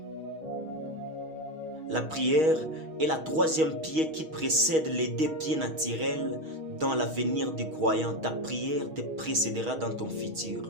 La prière est la 3e pied qui précède les 2 pieds naturels dans l'avenir du croyant. Ta prière te précédera dans ton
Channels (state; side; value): late; left; 6.3 ms